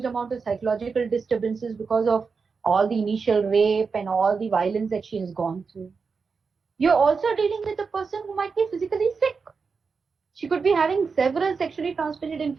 amount of psychological disturbances because of all the initial rape and all the violence that she has gone through. You're also dealing with a person who might be physically sick. She could be having several sexually transmitted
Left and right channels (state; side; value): quieter; left; 5.1 dB